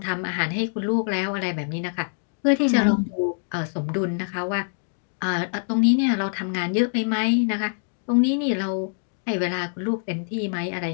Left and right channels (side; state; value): right; silent; digital silence